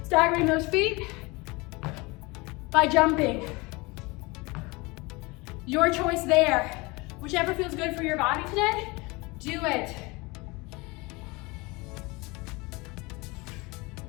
Staggering those feet by jumping. Your choice there. Whichever feels good for your body today, do it.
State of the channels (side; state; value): right; quieter; 24.8 dB